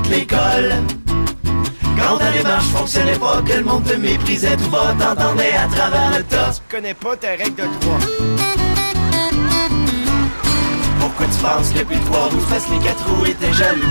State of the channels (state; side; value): inverted; both; correlation -1.00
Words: l'école. Quand ta démarche fonctionnait pas, que le monde te méprisait tout bas, t'entendais à travers le tas. Tu connais pas ta règle de 3. Pourquoi tu penses que plus de 3 roues fassent les 4 roues et t'es jaloux